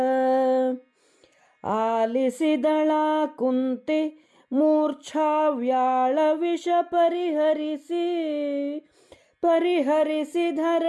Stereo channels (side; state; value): both; identical; correlation 1.00